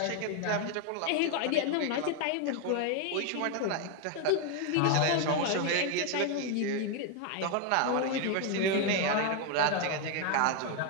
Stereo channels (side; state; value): both; different; correlation 0.01